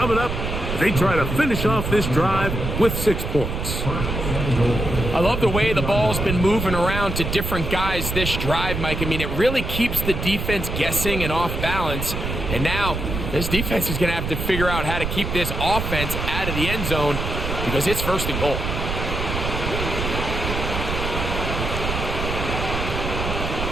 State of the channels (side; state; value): right; noise; rumble, 3 dB below the sound